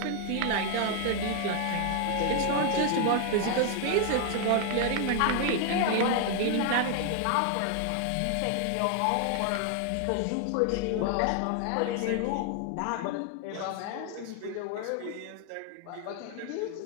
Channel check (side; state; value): both; different; correlation 0.00